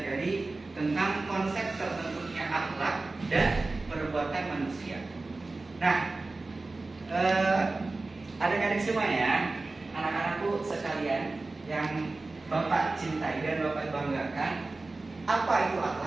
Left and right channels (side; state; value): left; quieter; 3.4 dB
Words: tentang konsep terbentuknya akhlak dan perbuatan manusia. Nah, adik-adik semua ya, anak-anakku sekalian yang Bapak cintai dan Bapak banggakan, apa itu